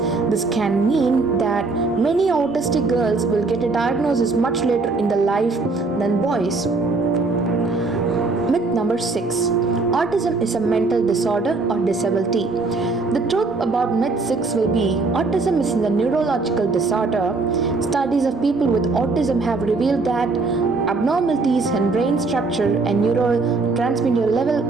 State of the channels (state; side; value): quieter; left; 3.8 dB